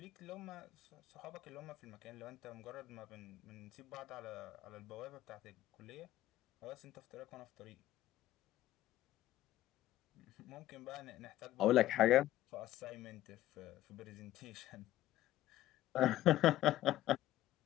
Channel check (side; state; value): right; quieter; 14.4 dB